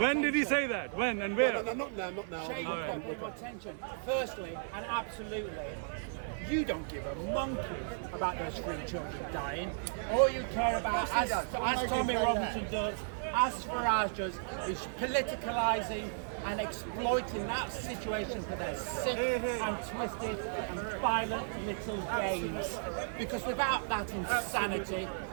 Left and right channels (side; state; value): left; silent; 55 dB below the other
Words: did he attention. say that? When and where? No, not now. Shame you don't pay more attention. Firstly, and absolutely, you don't give a monkey about those 3 children dying. All you care about, as Tommy Robinson does, as Farage does, is politicalising and exploiting that situation for their sick and twisted and violent little games. Because without that insanity,